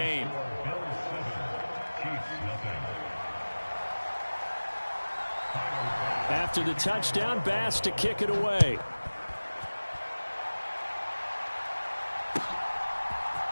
After the touchdown, Bass to kick it away.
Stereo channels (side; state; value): both; inverted; correlation -1.00